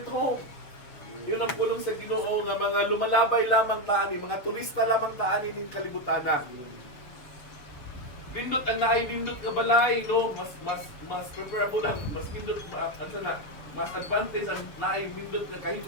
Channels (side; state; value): right; late; 6.5 ms